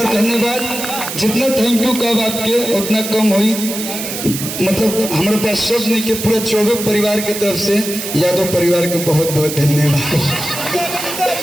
धन्यवाद। जितना थैंक यू कब आपके उतना कम हुई, मतलब हमारे पास शब्द नहीं के पूरे 24 परिवार की तरफ से यादव परिवार के बहुत बहुत धन्यवाद।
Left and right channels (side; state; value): right; noise; hiss, 6 dB below the sound